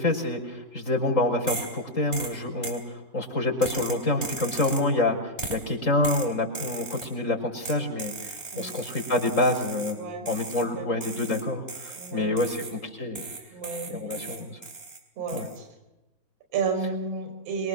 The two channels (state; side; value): late; right; 2.9 ms